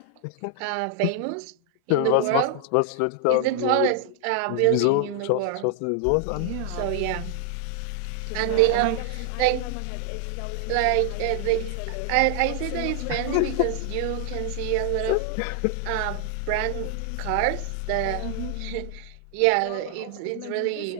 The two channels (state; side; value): different; both; correlation 0.00